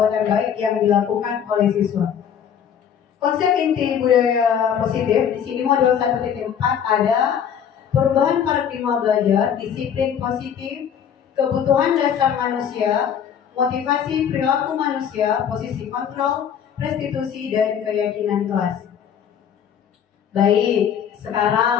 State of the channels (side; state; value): right; quieter; 8.3 dB